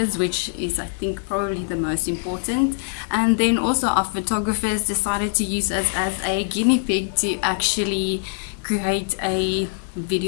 which is, I think, probably the most important. And then also our photographers decided to use us as a guinea pig to actually create a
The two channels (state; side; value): silent; right; 57 dB below the other